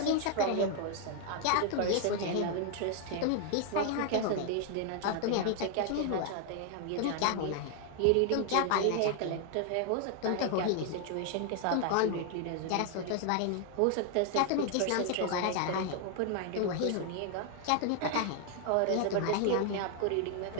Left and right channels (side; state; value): both; different; correlation 0.00